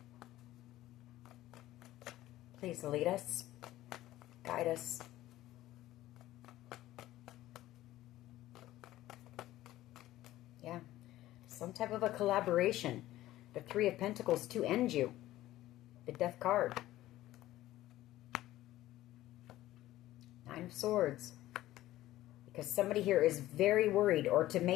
Please lead us, guide us. Yeah, some type of a collaboration. The Three of Pentacles to end you. The Death card. Nine of Swords. Because somebody here is very worried, or to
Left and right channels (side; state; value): right; quieter; 15.3 dB